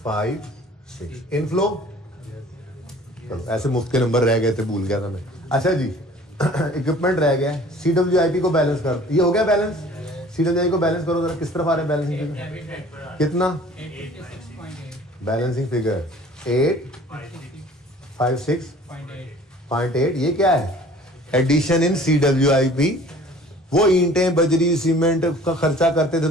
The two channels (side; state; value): both; normal; correlation 0.49